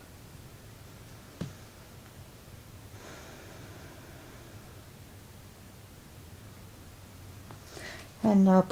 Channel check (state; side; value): identical; both; correlation 1.00